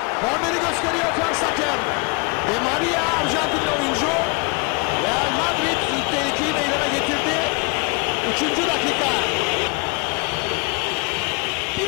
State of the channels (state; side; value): quieter; right; 33.3 dB